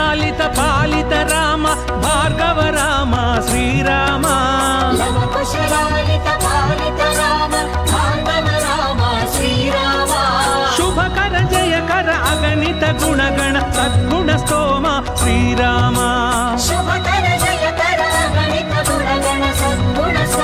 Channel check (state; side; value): identical; both; correlation 1.00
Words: పాలిత రామ భార్గవ రామ శ్రీరామ लव कुशलालित पालित राम भार्गव राम श्रीराम శుభకర జయకర అగణిత గుణగణ సద్గుణ స్తోమ శ్రీరామ शुभकर जयकर गणित गुणगण सद्गुण